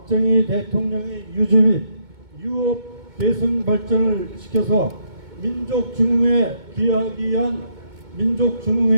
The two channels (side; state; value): left; late; 2.2 ms